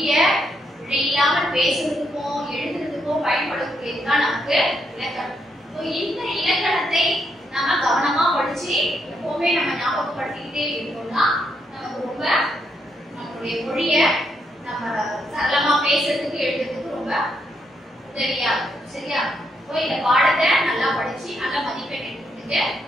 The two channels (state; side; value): normal; both; correlation 0.77